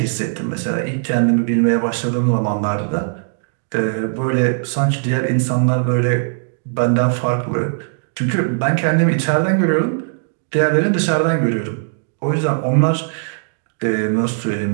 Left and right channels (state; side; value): silent; left; digital silence